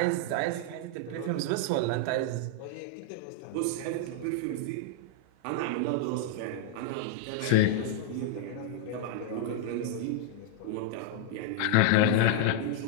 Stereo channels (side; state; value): both; different; correlation -0.01